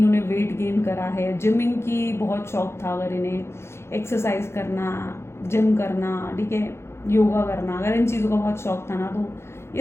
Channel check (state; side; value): late; right; 0.12 ms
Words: वेट गेन करा है, जिमिंग की बहुत शौक था अगर इन्हें, एक्सरसाइज करना, जिम करना, ठीक है, योगा करना, अगर इन चीज़ों का बहुत शौक था ना, तो